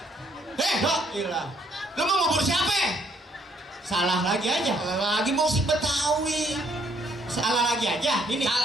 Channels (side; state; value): both; normal; correlation 0.67